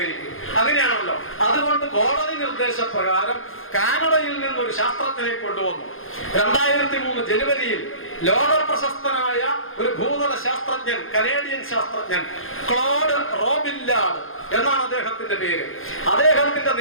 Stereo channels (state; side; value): late; right; 0.60 ms